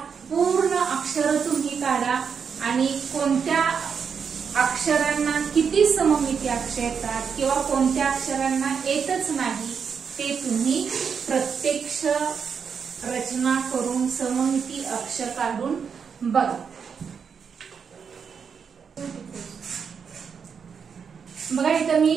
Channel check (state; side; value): quieter; left; 6.5 dB